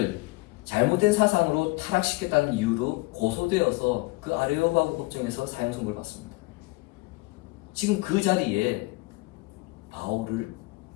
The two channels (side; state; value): right; quieter; 23.4 dB